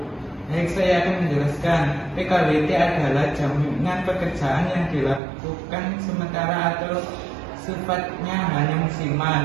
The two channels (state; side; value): drops out; left; at 5.2 s